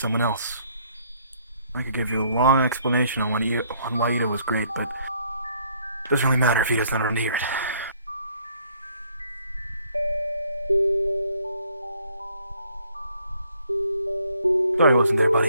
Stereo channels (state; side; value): inverted; both; correlation -0.66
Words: else. I could give you a long explanation on why Itto was great, but it doesn't really matter if he doesn't want to hear it. Sorry I wasn't there,